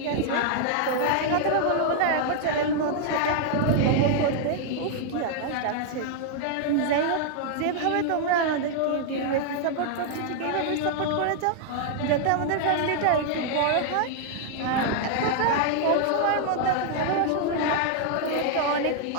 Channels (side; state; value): both; different; correlation -0.01